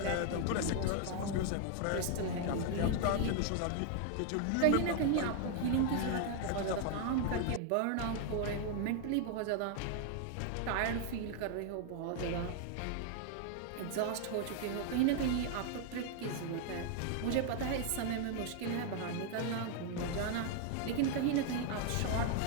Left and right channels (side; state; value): both; different; correlation 0.00